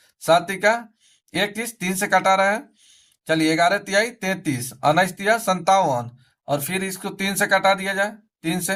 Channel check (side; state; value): both; identical; correlation 1.00